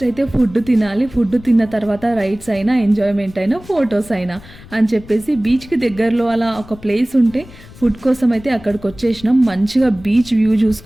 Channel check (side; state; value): left; noise; rumble, 20 dB below the sound